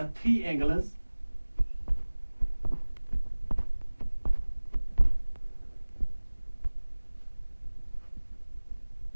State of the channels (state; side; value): inverted; both; correlation -1.00